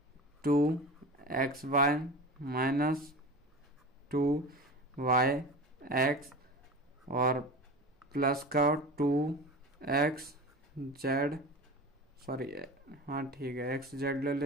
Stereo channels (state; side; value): normal; both; correlation 0.32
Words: 2xy माइनस 2yx और प्लस का 2xz सॉरी, हाँ ठीक है, एक्स जेड ले